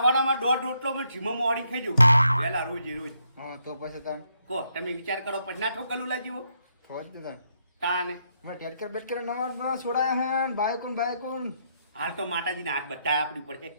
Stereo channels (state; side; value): inverted; both; correlation -0.76